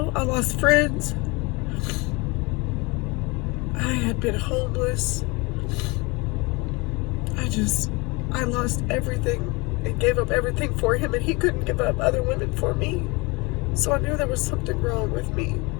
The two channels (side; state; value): right; quieter; 26.6 dB